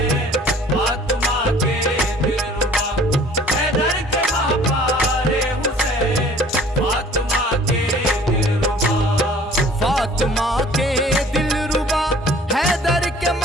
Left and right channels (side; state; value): both; normal; correlation 0.51